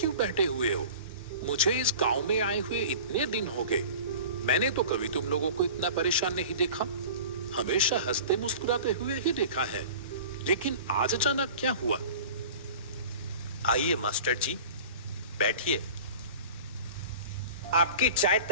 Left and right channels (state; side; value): inverted; both; correlation -0.39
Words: बैठे हुए हो? मुझे इस गांव में आए हुए इतने दिन हो गए, मैंने तो कभी तुम लोगों को इतना परेशान नहीं देखा। हमेशा हंसते मुस्कुराते हुए ही देखा है, लेकिन आज अचानक क्या हुआ? आइए मास्टर जी, बैठिए। आपकी चाय